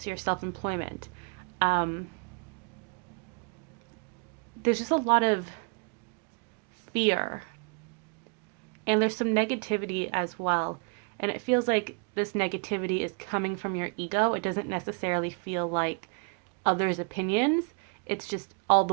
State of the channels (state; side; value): quieter; left; 36.2 dB